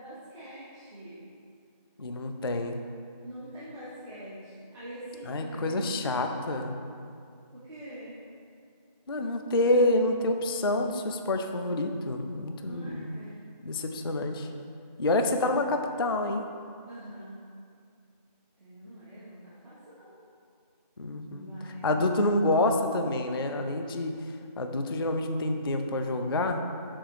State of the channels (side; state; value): both; inverted; correlation -0.42